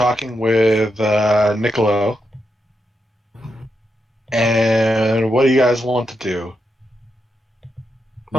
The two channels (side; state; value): both; normal; correlation 0.84